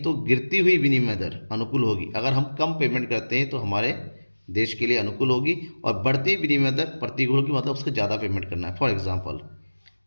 गिरती हुई विनिमय दर अनुकूल होगी। अगर हम कम पेमेंट करते हैं तो हमारे देश के लिए अनुकूल होगी, और बढ़ती विनिमय दर प्रतिकूल होगी, मतलब उसको ज़्यादा पेमेंट करना है। फॉर एग्जाम्पल,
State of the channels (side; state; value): both; inverted; correlation -1.00